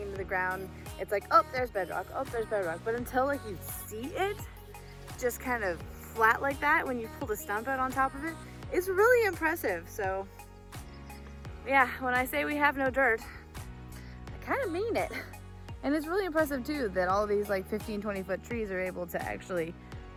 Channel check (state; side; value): identical; both; correlation 1.00